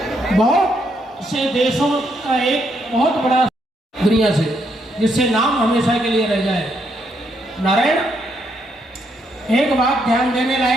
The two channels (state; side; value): normal; both; correlation 0.76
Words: बहुत से देशों का एक बहुत बड़ा दुनिया से, जिससे नाम हमेशा के लिए रह जाए। नारायण, एक बात ध्यान देने